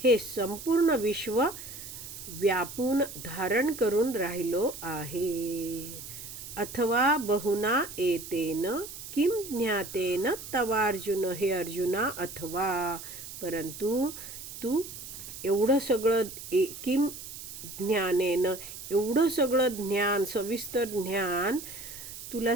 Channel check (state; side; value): noise; right; hiss, 11 dB below the sound